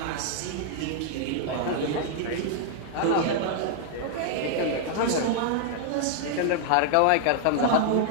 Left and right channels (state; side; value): different; both; correlation 0.00